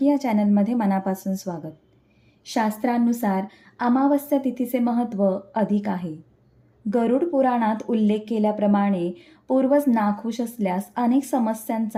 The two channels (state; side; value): identical; both; correlation 1.00